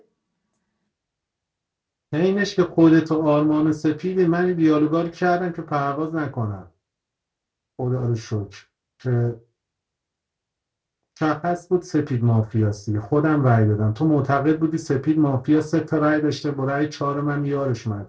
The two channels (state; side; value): identical; both; correlation 1.00